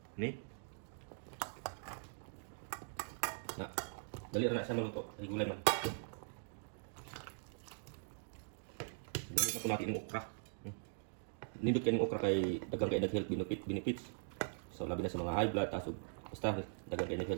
Ni. Na. Dali ra na sa maluto. Ay gulay man. Dali na ko natin yung okra. Nindot kayo ng okra kay dagang kayo nag-health benefits. So labi na sa mga high blood, taas o basta dagang kayo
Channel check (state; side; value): silent; left; digital silence